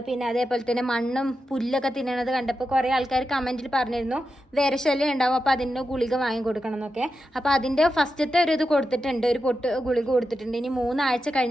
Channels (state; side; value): normal; both; correlation 0.89